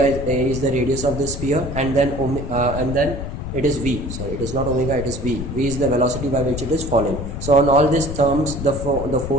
is the radius of the sphere, and then it is V. Sorry, it is not omega, it is V. V is the velocity by which it is falling. So on all these terms, the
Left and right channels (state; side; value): noise; left; rumble, 7 dB below the sound